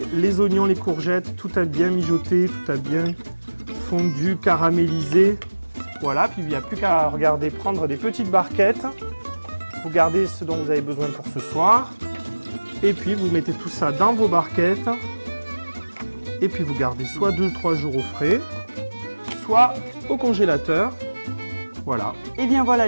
Les oignons, les courgettes, tout a bien mijoté, tout a bien fondu, caramélisé. Voilà, puis il n'y a plus qu'à regarder, prendre des petites barquettes. Vous gardez ce dont vous avez besoin pour ce soir. Et puis vous mettez tout ça dans vos barquettes. Et puis vous gardez soit 2-3 jours au frais, soit au congélateur. Voilà. Et bien voilà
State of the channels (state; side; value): inverted; both; correlation -1.00